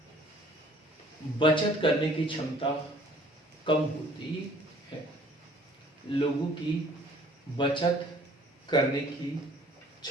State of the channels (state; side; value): normal; both; correlation 0.55